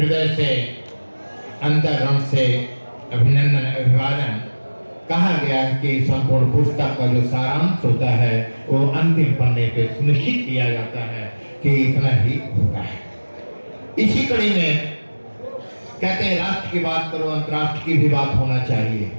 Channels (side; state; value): both; inverted; correlation -1.00